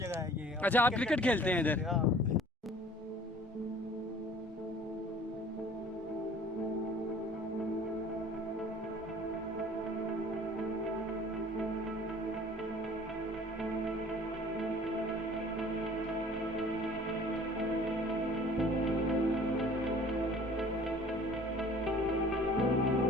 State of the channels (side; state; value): both; normal; correlation 0.50